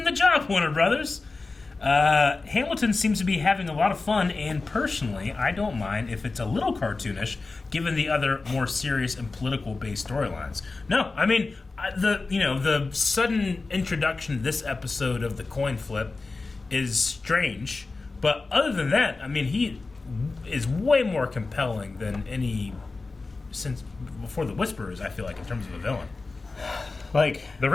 the job, Warner Brothers. Hamilton seems to be having a lot of fun, and personally, I don't mind if it's a little cartoonish, given the other more serious and political-based storylines. No, I mean, the sudden introduction to this episode of the coin flip is strange, but other than that, I mean, he is way more compelling than any since before the Whisperers. I feel like in terms of a villain, Like, the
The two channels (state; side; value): quieter; right; 3.7 dB